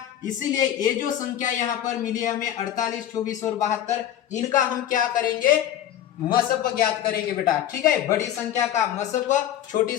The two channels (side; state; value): right; quieter; 11.2 dB